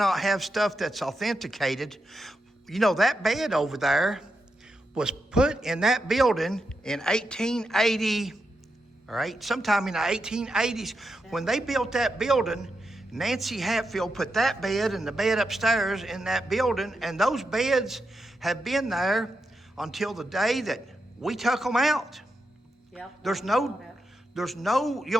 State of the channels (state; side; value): normal; both; correlation 0.86